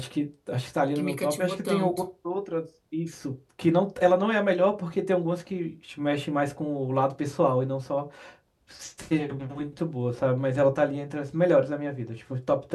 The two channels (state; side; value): identical; both; correlation 1.00